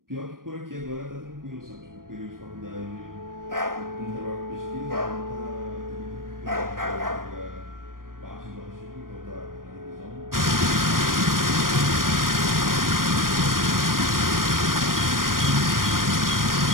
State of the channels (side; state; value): left; late; 0.91 ms